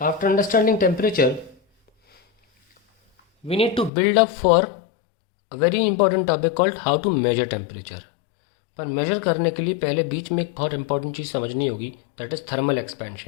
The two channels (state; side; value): drops out; right; at 3.9 s